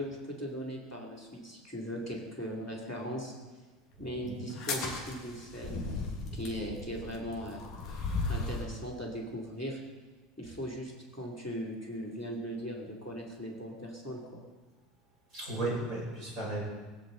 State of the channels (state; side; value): normal; both; correlation 0.33